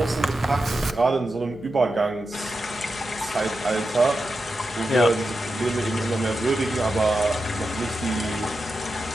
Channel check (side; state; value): right; noise; hum, 21 dB below the sound